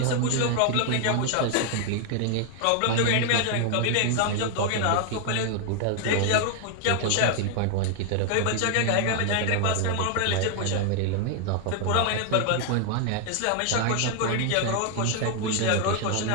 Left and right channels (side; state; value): both; different; correlation 0.00